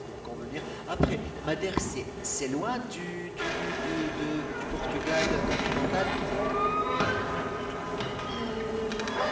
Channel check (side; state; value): both; identical; correlation 1.00